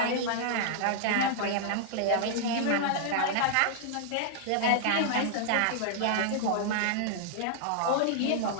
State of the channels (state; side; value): different; both; correlation -0.01